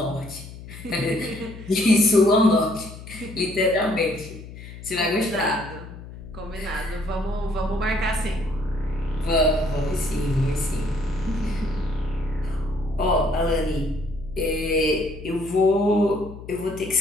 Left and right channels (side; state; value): left; noise; hum, 14 dB below the sound